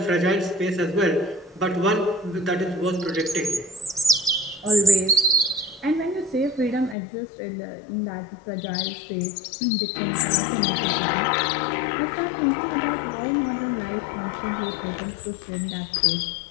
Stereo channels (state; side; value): drops out; right; at 7.0 s